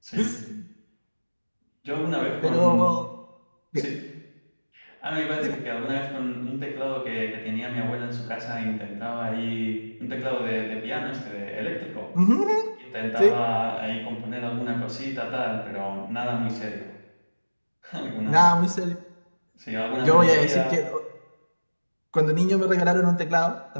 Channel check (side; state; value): both; inverted; correlation -1.00